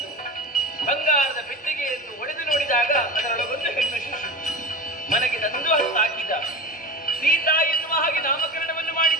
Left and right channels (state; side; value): normal; both; correlation 0.29